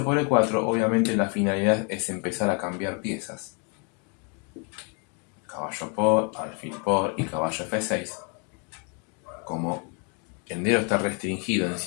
por E4, obviamente la finalidad es empezar a cambiar piezas. Caballo por, alfil por y caballo F6. Como el negro está restringido en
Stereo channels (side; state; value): right; quieter; 37.6 dB